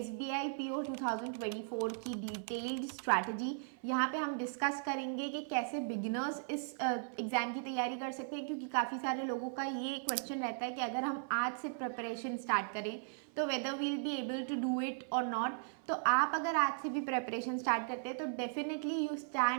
PO 2024 की डिटेल्ड स्ट्रैटेजी। यहाँ पे हम डिस्कस करेंगे कि कैसे बिगिनर्स इस एग्ज़ाम की तैयारी कर सकते हैं, क्योंकि काफ़ी सारे लोगों का ये क्वेश्चन रहता है कि अगर हम आज से प्रिपरेशन स्टार्ट करें तो whether will be able to do it और नॉट। तो आप अगर आज से भी प्रिपरेशन स्टार्ट करते हैं तो definitely you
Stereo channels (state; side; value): silent; left; 53 dB below the other